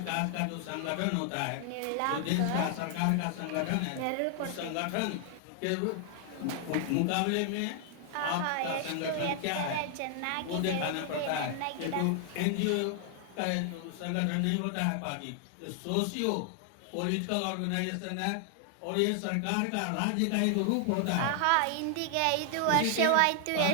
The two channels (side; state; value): both; different; correlation 0.00